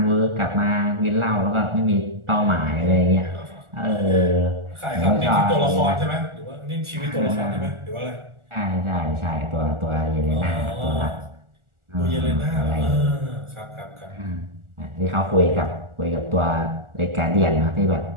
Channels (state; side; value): late; left; 1.4 ms